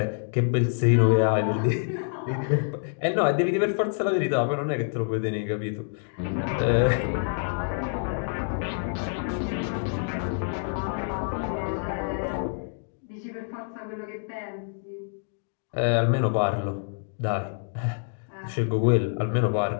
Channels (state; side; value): silent; right; digital silence